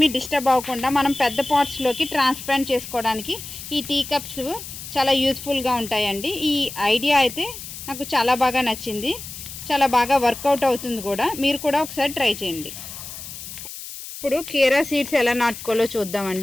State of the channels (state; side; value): noise; left; hiss, 11 dB below the sound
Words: డిస్టర్బ్ అవ్వకుండా మనం పెద్ద పాట్స్లోకి ట్రాన్స్ప్లాంట్ చేసుకోవడానికి ఈ టీ కప్స్ చాలా యూస్ఫుల్గా ఉంటాయండి. ఈ ఐడియా అయితే నాకు చాలా బాగా నచ్చింది, చాలా బాగా వర్కౌట్ అవుతుంది కూడా. మీరు కూడా ఒకసారి ట్రై చేయండి. ఇప్పుడు కీరా సీడ్స్ ఎలా నాటుకోవాలో